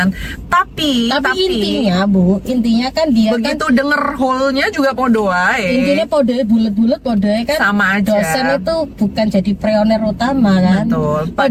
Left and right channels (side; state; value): both; identical; correlation 1.00